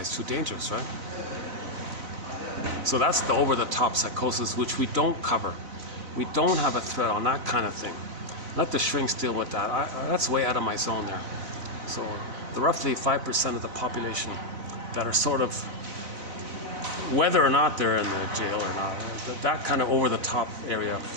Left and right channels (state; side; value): late; left; 4.0 ms